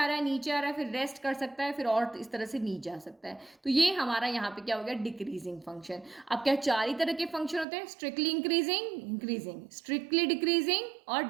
रहा है नीचे आ रहा है, फिर रेस्ट कर सकता है, फिर और इस तरह से नीचे आ सकता है। तो ये हमारा यहाँ पे क्या हो गया, डिक्रीजिंग फंक्शन। अब क्या 4 ही तरह के फंक्शन होते हैं, स्ट्रिक्टली इंक्रीजिंग, स्ट्रिक्टली डिक्रीजिंग और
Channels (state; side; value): drops out; left; at 7.7 s